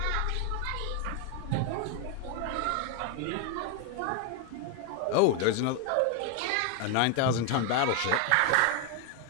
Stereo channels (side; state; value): both; different; correlation 0.01